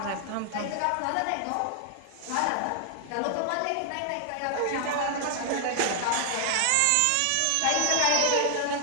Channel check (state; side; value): different; both; correlation 0.00